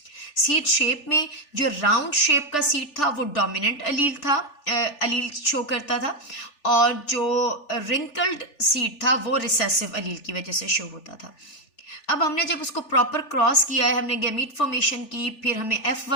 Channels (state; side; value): late; right; 3.4 ms